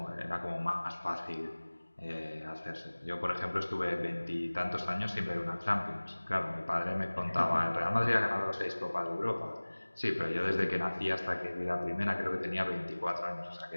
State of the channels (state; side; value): inverted; both; correlation -1.00